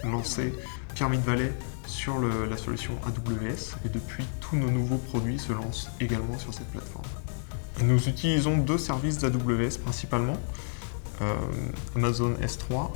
lancé Pyramid Valley sur la solution AWS et depuis, tous nos nouveaux produits se lancent également sur cette plateforme. Nous utilisons deux services d'AWS principalement, Amazon S3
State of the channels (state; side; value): silent; right; digital silence